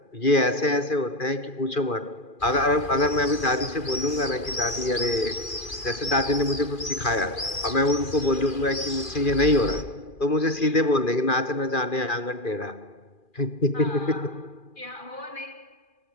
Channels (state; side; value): late; right; 2.4 ms